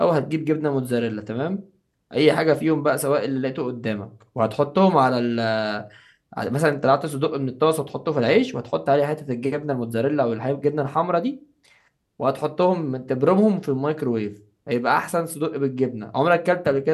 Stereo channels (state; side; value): identical; both; correlation 1.00